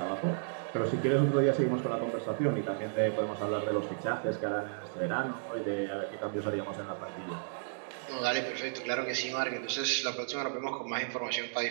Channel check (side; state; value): left; silent; digital silence